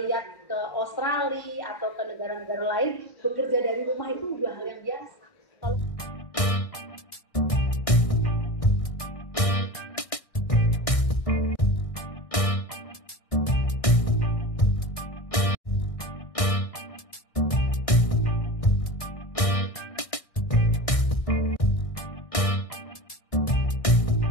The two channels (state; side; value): late; right; 1.6 ms